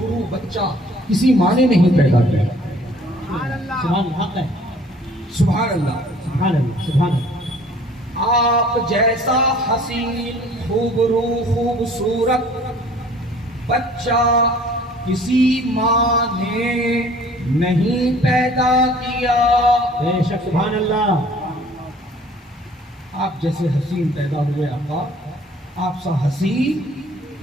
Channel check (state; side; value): normal; both; correlation 0.53